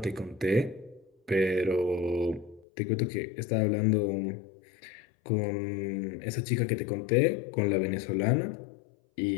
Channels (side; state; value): right; drops out; at 2.7 s